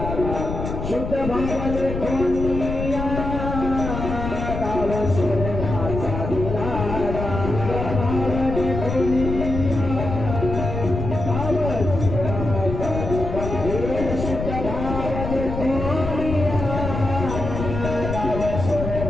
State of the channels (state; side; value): noise; left; rumble, 5 dB below the sound